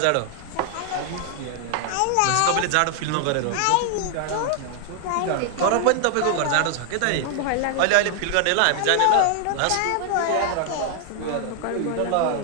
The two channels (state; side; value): different; both; correlation 0.00